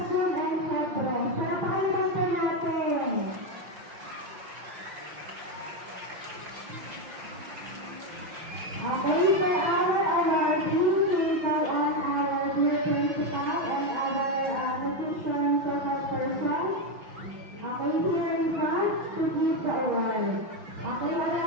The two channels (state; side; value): late; left; 5.8 ms